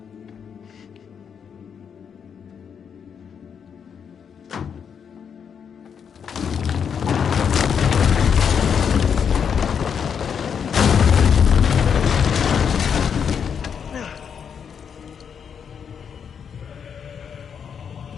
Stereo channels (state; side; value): quieter; right; 7.2 dB